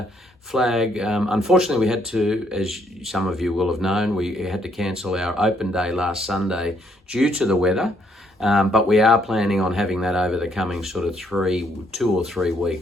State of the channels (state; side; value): normal; both; correlation 0.70